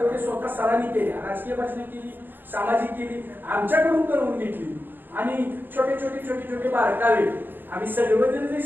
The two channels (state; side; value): late; left; 0.094 ms